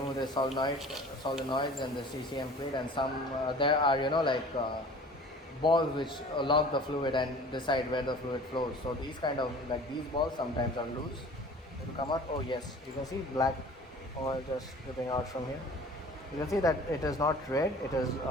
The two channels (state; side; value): normal; both; correlation 0.45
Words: the solenoids and the CCM plate, and some there are balls which lock the fluid and decide where the fluid flows. So these these balls sometimes are loose. It will come out. Oh yes, you can see black oil just dripping out from here. You can see that it is not red. It is